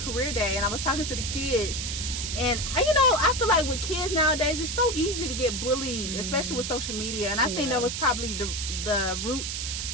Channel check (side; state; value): right; noise; hiss, 3 dB below the sound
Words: day and I was talking to the kids, and I feel like with kids nowadays, it's so easy to get bullied, especially with social media. And I think that was probably the root